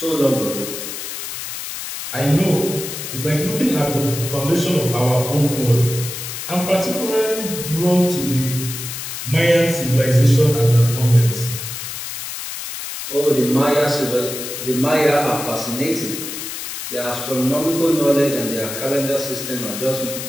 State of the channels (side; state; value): left; noise; hiss, 7 dB below the sound